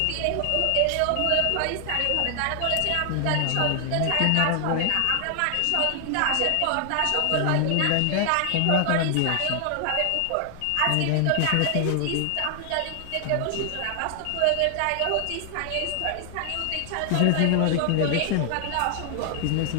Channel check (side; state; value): both; different; correlation 0.00